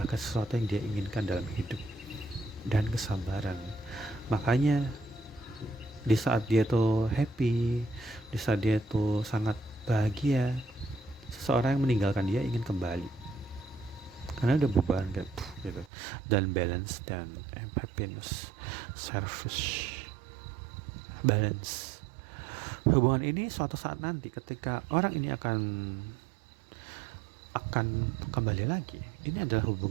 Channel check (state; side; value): drops out; left; at 15.9 s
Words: sesuatu yang dia inginkan dalam hidup, dan kesabaran. Makanya di saat dia tuh happy, di saat dia tuh sangat bahagia, seseorang yang meninggalkan dia ingin kembali karena udah beban kayak gitu. Dan balance dan happiness, service, balance. Hubungan ini suatu saat nanti ketika orang ini akan kembali lagi, ini adalah